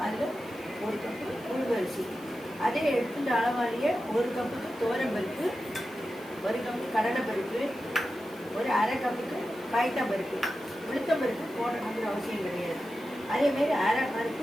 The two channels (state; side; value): noise; right; hiss, 24 dB below the sound